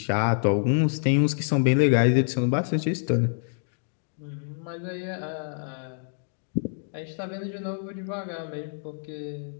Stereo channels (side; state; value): right; silent; digital silence